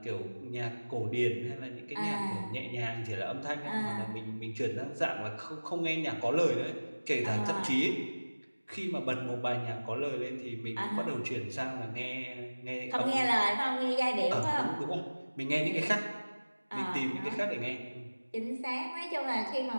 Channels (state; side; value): inverted; both; correlation -1.00